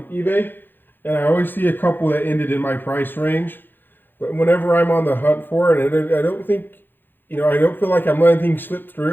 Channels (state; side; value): late; right; 0.095 ms